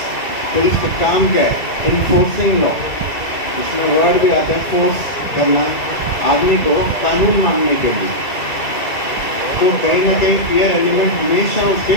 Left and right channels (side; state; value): right; late; 2.3 ms